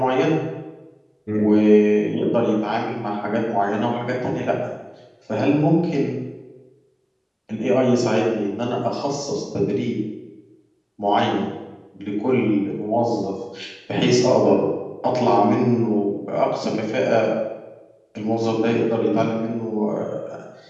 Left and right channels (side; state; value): both; identical; correlation 1.00